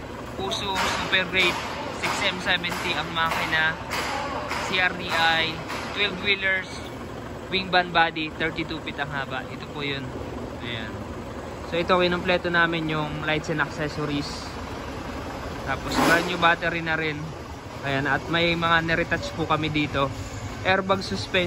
Puso Super Great 6M70 ang makina. CRDI 12 wheelers, wing band body, 32 feet ang haba. Ito po yun. Ayan. So ito kinumpleto namin yung lights and accessories. Tapos brand new battery na rin. Ayan, at may mga niretouch po kami dito. Airbag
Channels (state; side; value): identical; both; correlation 1.00